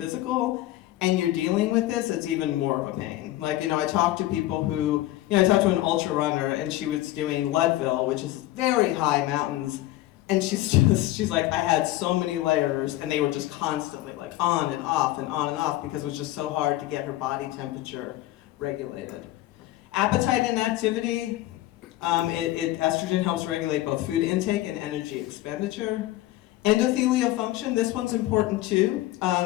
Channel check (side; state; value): right; quieter; 15.9 dB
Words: and you're dealing with this, it's even more of a pain. Like, you know, I talked to people who, you know, I talked to an ultra runner and she was doing Leadville, which is very high mountains. And she's like, I had so many layers and they were just constantly like on and off and on and off because it was just so hard to get her body temperature regulated. Appetite and activity. Estrogen helps regulate both food intake and energy expenditure. Endothelial function, this one's important too.